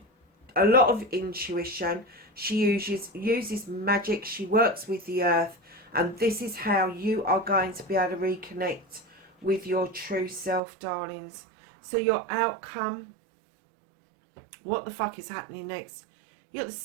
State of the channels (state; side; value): drops out; left; at 10.6 s